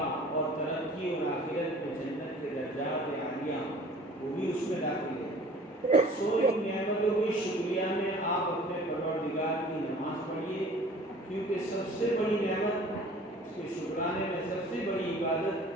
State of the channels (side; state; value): both; normal; correlation 0.48